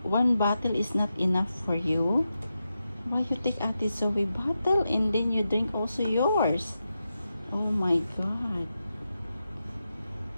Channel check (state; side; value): inverted; both; correlation -0.89